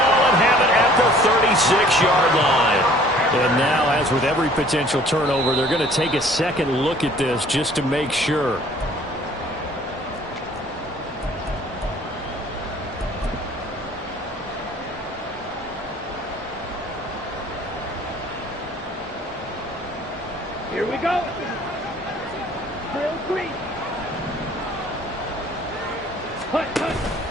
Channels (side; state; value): both; normal; correlation 0.54